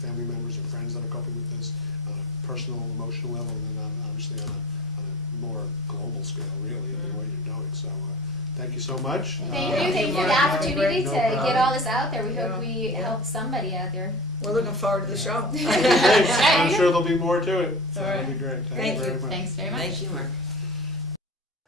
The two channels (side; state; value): both; normal; correlation 0.35